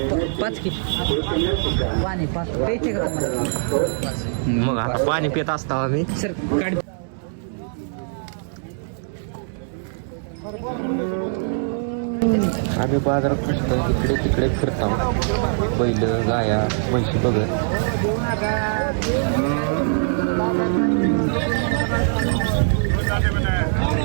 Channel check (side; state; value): left; silent; digital silence